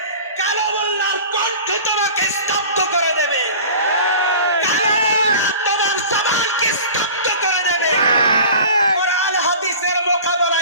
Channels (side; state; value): both; inverted; correlation -0.39